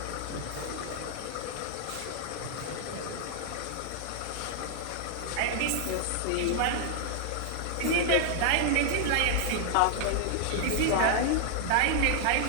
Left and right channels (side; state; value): both; different; correlation 0.00